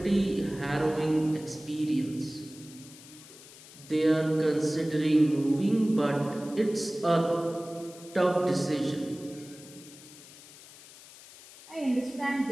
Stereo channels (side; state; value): left; noise; hiss, 19 dB below the sound